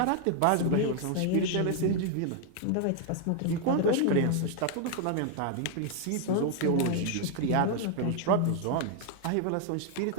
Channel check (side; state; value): both; different; correlation 0.00